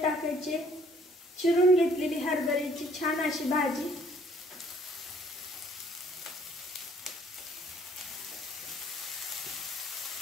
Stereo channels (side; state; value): both; normal; correlation 0.60